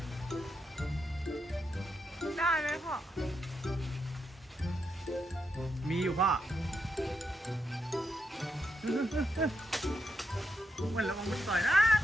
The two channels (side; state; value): both; normal; correlation 0.83